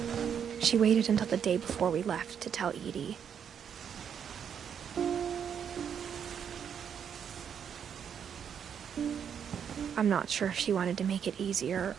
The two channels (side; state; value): left; quieter; 7.9 dB